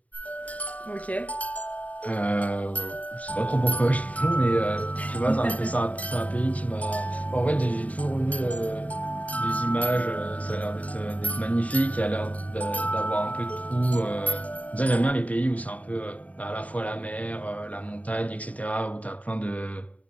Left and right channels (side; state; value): right; late; 0.070 ms